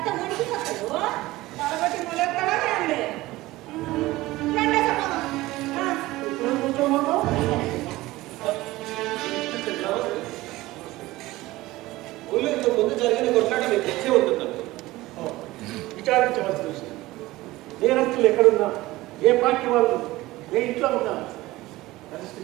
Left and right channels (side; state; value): left; quieter; 18.4 dB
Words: ముడికిపోతారు? కాబట్టి ములెక్కడా రండి. రండి సమానం. ఇక్కడ కూర్చోమన్నావు? ఊళ్ళో ఇంతకు ముందు జరిగిన కొట్లాట మీకు తెలిసే ఉంటుందండి. విచారించవలసిన విషయం. నేరస్తులు ఎక్కడున్నా, ఏ పార్టీ వాళ్ళు, ఏ ఇంట్లో ఉన్నా అరెస్ట్